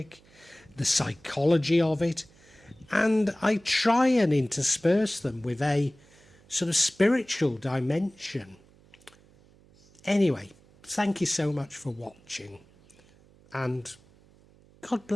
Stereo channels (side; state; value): right; noise; hum, 28 dB below the sound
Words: the psychology of it, and I try and intersperse them with a sort of spiritual dimension. Anyway, thank you so much for watching, and God